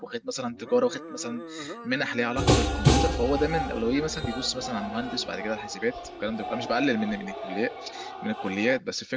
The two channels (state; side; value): identical; both; correlation 1.00